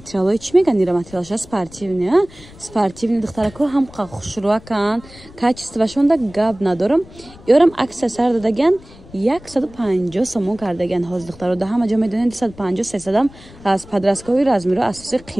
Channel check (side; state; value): left; noise; rumble, 21 dB below the sound